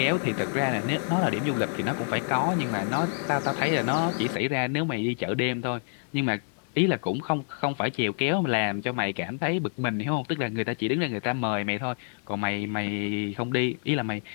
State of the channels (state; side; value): silent; right; 60 dB below the other